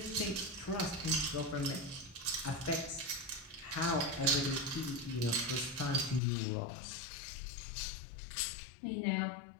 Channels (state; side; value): drops out; right; at 6.2 s